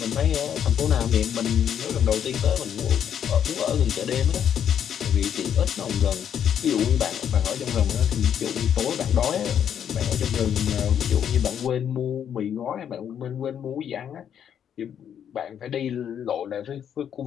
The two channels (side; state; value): right; quieter; 8.9 dB